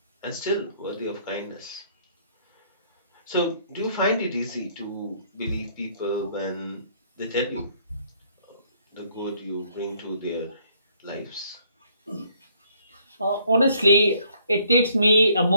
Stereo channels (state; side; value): inverted; both; correlation -0.65